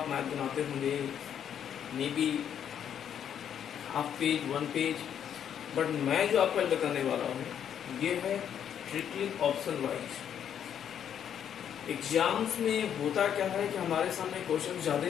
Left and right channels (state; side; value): quieter; right; 9.0 dB